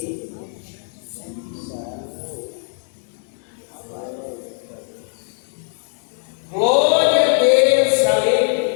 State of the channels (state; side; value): silent; right; digital silence